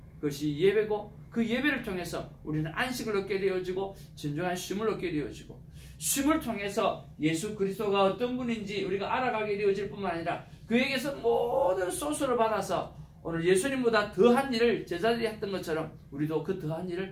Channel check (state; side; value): identical; both; correlation 1.00